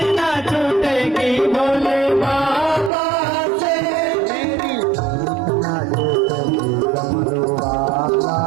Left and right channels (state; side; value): drops out; left; at 2.9 s